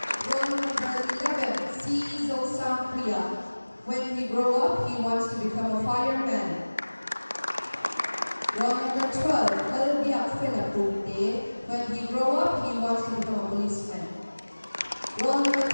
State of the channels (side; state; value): both; inverted; correlation -1.00